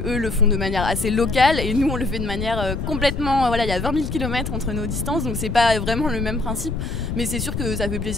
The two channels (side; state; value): left; noise; rumble, 4 dB below the sound